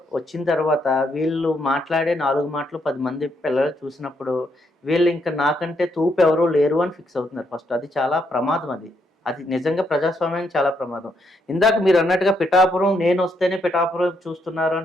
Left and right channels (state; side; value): normal; both; correlation 0.76